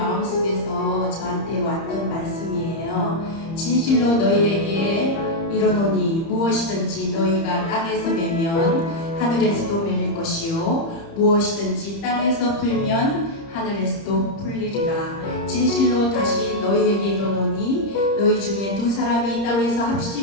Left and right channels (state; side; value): late; right; 30 ms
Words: 저한테 왔던 말씀이에요. 진실로 너희에게 이르노니 무엇이든지 너희가 땅에서 매면 하늘에서도 매일 것이요 무엇이든지 땅에서 풀면 하늘에서도 풀리리라. 진실로 다시 너희에게 이르노니 너희 중에 두 사람이 땅에서